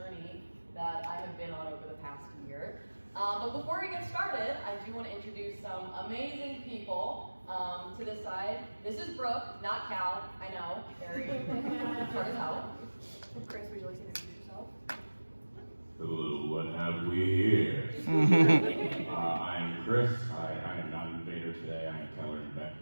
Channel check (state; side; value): inverted; both; correlation -1.00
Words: that I have been on over the past year. But before we get started, I do want to introduce some amazing people to this side. This is Brooke, not Cal. I know, very hard as hell. Kris, would you like to introduce yourself? Hello, what have we here? I'm Kris. I am not an invader today. I am Keller and Beck.